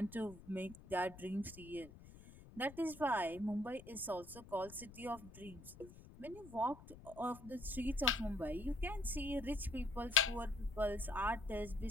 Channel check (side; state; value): left; noise; rumble, 18 dB below the sound